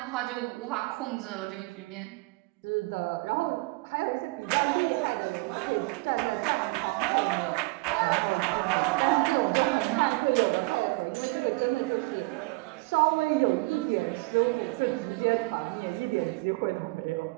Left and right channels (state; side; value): quieter; left; 24.4 dB